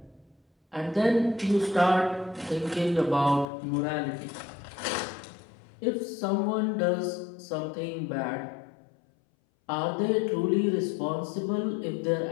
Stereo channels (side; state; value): right; drops out; at 3.5 s